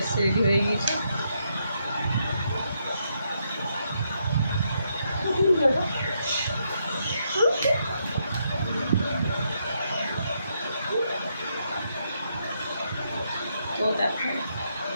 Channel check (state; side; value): inverted; both; correlation -0.78